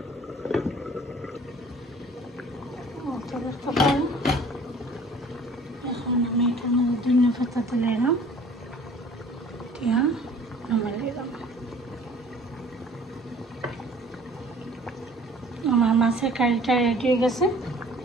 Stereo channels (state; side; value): normal; both; correlation 0.50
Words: এখন আমি এটার মধ্যে ধনিয়া পাতা তুলে এলাম, দিয়া নামাই দিলাম। আমার মাছের কারিটা রেডি হয়ে গেছে।